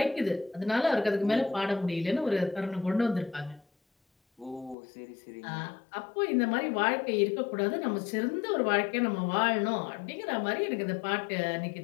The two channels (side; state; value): right; drops out; at 4.8 s